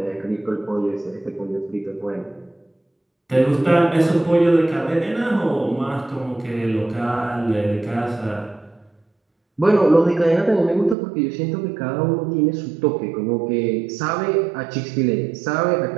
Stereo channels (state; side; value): drops out; left; at 11.0 s